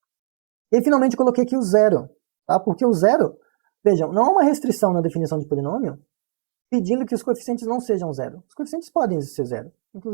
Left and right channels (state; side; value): silent; left; digital silence